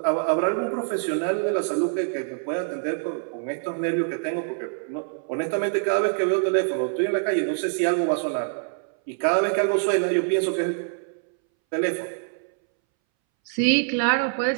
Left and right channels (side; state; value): left; silent; 62 dB below the other